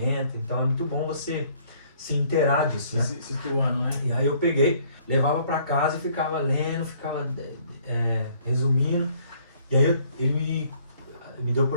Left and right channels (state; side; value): inverted; both; correlation -0.61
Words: então é muito bom você se inteirar disso, né? Situando, né? E aí eu peguei, levava pra casa e ficava lendo, ficava resumindo. E aí ele me deu a